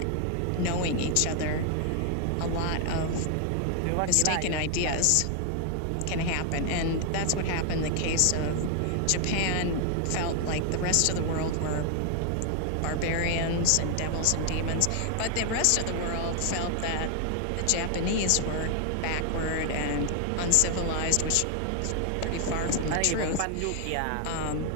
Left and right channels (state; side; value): different; both; correlation 0.00